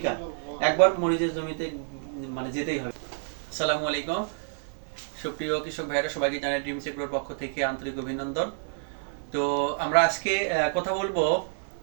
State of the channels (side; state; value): left; silent; 59 dB below the other